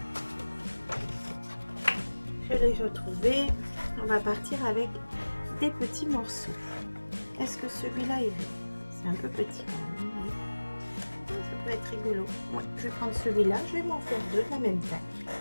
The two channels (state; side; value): inverted; both; correlation -1.00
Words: Je l'ai retrouvé. On va partir avec des petits morceaux. Est-ce que celui-là irait? C'est un peu petit quand même, mais ça peut être rigolo. Ouais, je vais prendre celui-là. Je vais m'en faire deux de la même taille.